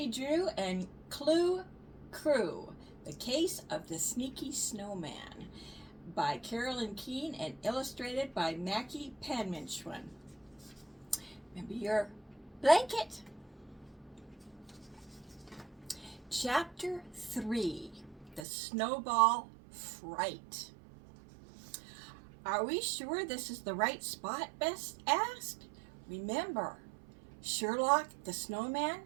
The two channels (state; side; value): drops out; left; at 18.4 s